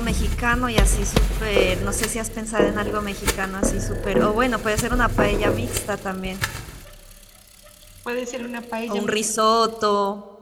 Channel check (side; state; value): both; identical; correlation 1.00